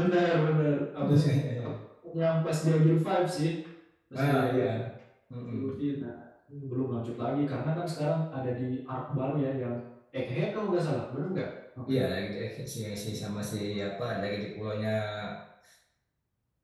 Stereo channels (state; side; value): identical; both; correlation 1.00